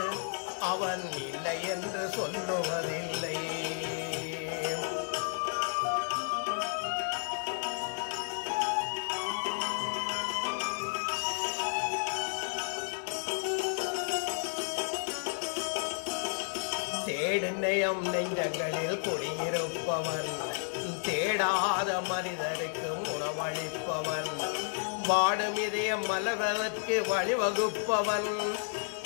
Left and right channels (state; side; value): silent; right; digital silence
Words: அவன் இல்லை என்று சொல்லுவதில்லை. தேடுநயம் நெஞ்சங்களில் குடியிருப்பவன், தேடாத மனிதருக்கு உணவளிப்பவன், வாடும் இதயம் மலர்வதற்கு வழிவகுப்பவன்,